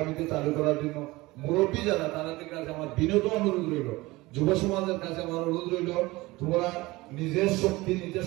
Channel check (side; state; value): left; quieter; 20.7 dB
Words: চালু করার জন্য মুরব্বী যারা তাদের কাছে আমার বিনীত অনুরোধ রইল, যুব সমাজের কাছে আমার অনুরোধ রইল, তোমরা নিজের শক্তি নিজে